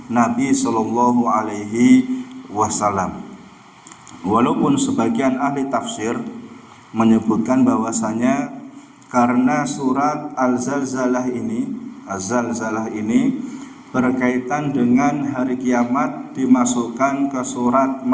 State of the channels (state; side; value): identical; both; correlation 1.00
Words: Nabi Sallallahu Alaihi Wasallam. Walaupun sebagian ahli tafsir menyebutkan bahwasanya karena surat Az-Zalzalah ini berkaitan dengan hari kiamat, dimasukkan ke surat